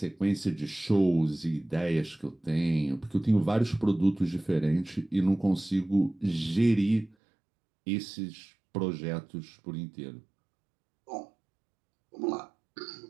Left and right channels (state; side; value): drops out; left; at 7.2 s